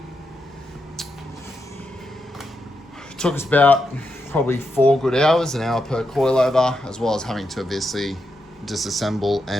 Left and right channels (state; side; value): normal; both; correlation 0.84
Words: It took us about probably 4 good hours, an hour per coilover, as well as having to obviously disassemble